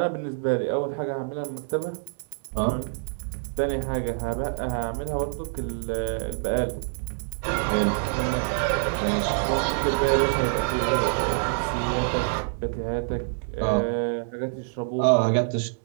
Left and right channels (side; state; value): left; silent; digital silence